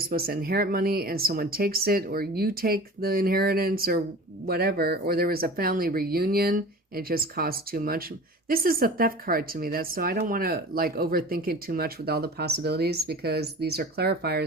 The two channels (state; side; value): normal; both; correlation 0.39